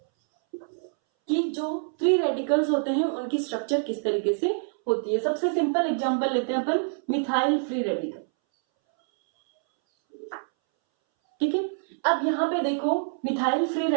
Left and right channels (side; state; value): left; silent; 61 dB below the other